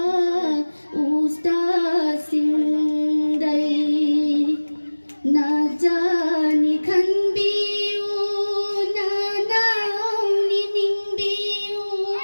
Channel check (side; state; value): both; inverted; correlation -1.00